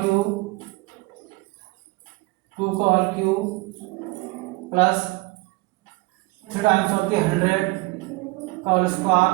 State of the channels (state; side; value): quieter; left; 23.6 dB